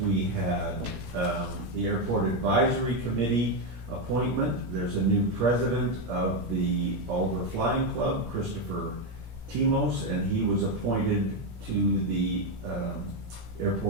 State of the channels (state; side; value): late; left; 17 ms